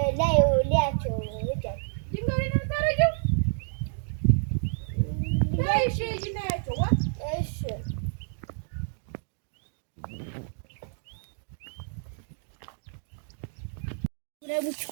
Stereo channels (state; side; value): silent; left; digital silence